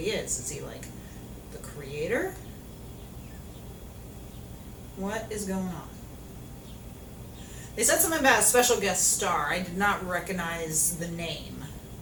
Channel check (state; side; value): identical; both; correlation 1.00